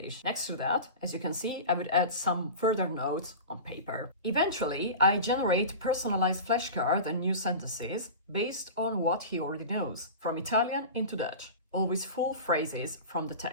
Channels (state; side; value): inverted; both; correlation -0.30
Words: Next to that, as you can see, I would add some further notes on paper. Eventually, I generate personalized flashcards and new sentences based on what he already knows, from Italian into Dutch, always full phrases from the